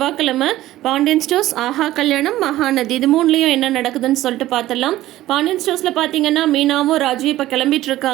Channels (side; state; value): left; quieter; 15.3 dB